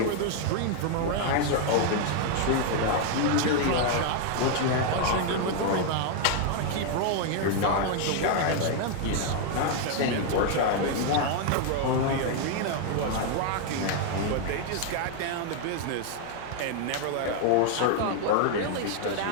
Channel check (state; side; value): different; both; correlation 0.00